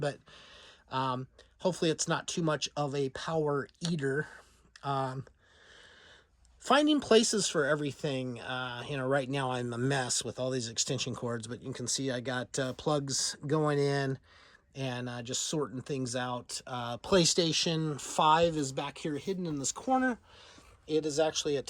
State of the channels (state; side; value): identical; both; correlation 1.00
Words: hopefully it's not too much of a power eater. Finding places for everything, right now I'm a mess with all these extension cords, but you can see I got plugs going in and just sorting things out. PlayStation 5 is back here hidden in this corner. It is actually